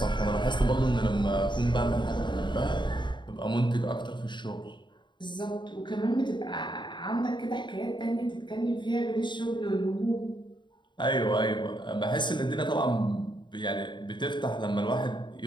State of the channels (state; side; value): late; right; 0.22 ms